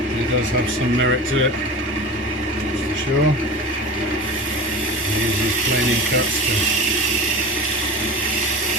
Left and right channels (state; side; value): normal; both; correlation 0.31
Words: It does have some merit to it, that's for sure. I use these planing cuts to